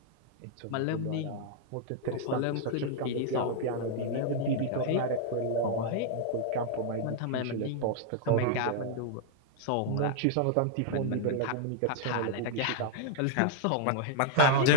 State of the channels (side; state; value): both; different; correlation -0.01